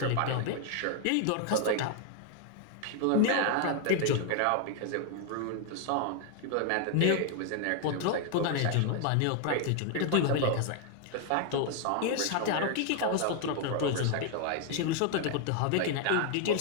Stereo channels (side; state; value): both; different; correlation 0.00